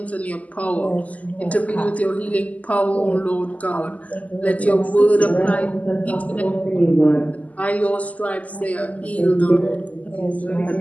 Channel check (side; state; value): right; late; 0.073 ms